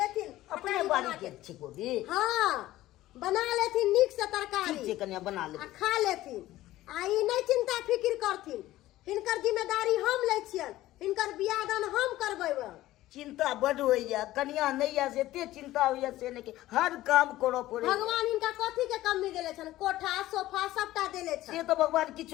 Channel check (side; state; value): right; quieter; 15.7 dB